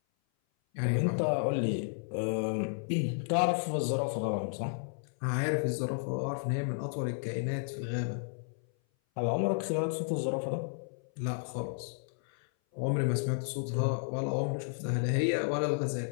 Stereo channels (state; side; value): silent; right; 56 dB below the other